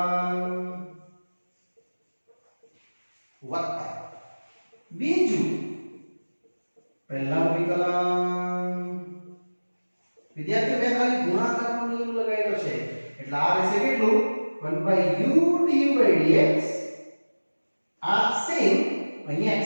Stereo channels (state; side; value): inverted; both; correlation -1.00